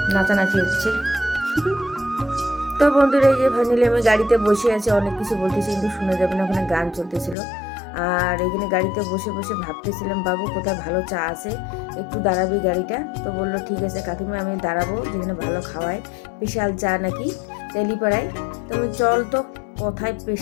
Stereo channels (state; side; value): drops out; right; at 7.4 s